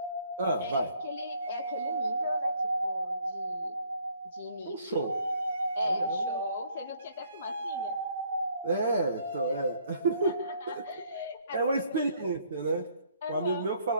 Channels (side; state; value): both; inverted; correlation -0.64